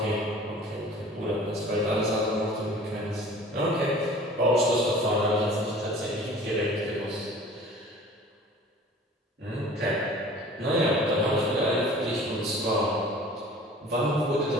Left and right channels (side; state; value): both; normal; correlation 0.46